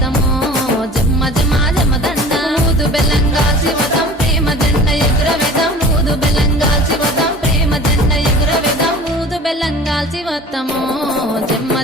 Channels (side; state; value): both; normal; correlation 0.42